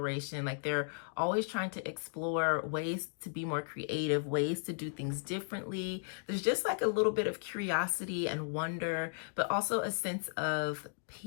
Like they're always trying to explore ways to be more creative, ways to do things differently. There's just like a little bit of curiosity and wonder, but also a sense of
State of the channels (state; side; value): silent; right; digital silence